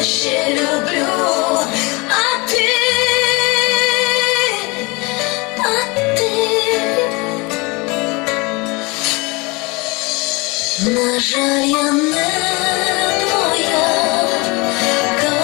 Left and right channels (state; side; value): quieter; right; 26.3 dB